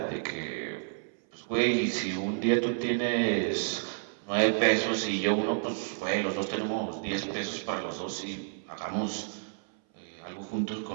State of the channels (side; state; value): left; silent; 57 dB below the other